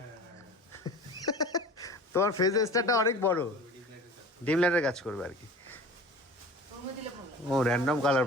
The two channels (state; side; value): normal; both; correlation 0.40